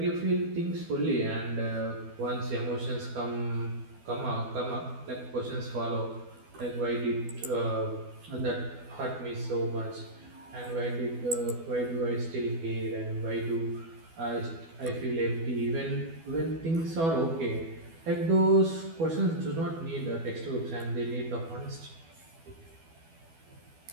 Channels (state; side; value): late; left; 12 ms